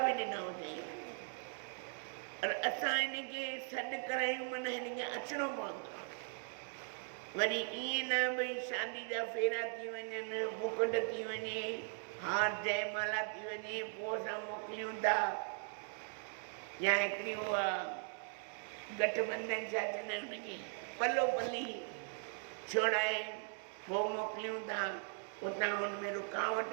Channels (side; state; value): left; silent; 52 dB below the other